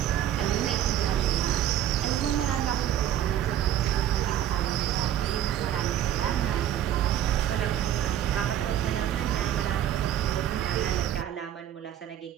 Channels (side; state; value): left; quieter; 11.1 dB